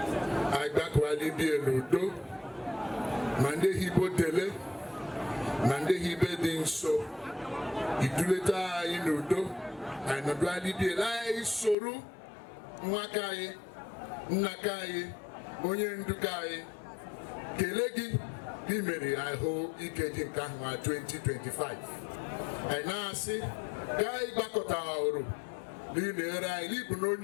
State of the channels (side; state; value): right; drops out; at 11.8 s